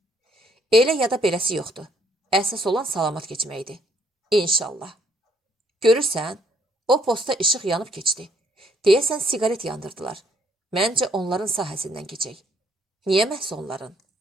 Elə ya da beləsi yoxdur. Əsas olan salamat keçməkdir. İnşallah. Görürsən, o posta işıq yanıb keçdi. Deyəsən siqaret yandırdılar. Məncə onların sahəsindən keçək. Niyə məhz onların?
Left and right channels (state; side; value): normal; both; correlation 0.67